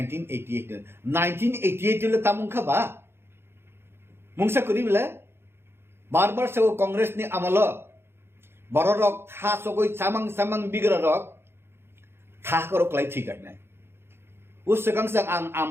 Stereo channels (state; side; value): late; left; 0.11 ms